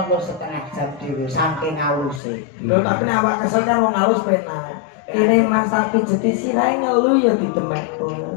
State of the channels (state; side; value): drops out; right; at 2.2 s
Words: lo setengah jam dhewe saking haluse. Lho tapi nek awak kesel kan wong halus penak. Kene Mas tapi jeti sirahe ngelu ya didemek tuh.